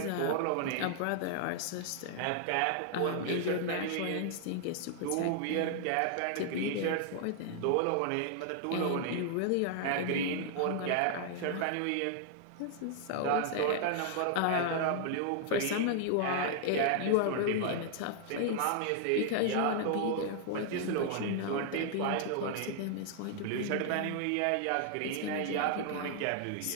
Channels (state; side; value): different; both; correlation -0.01